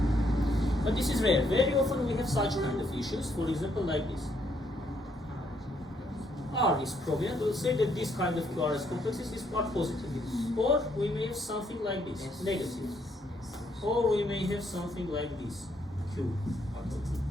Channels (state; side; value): normal; both; correlation 0.72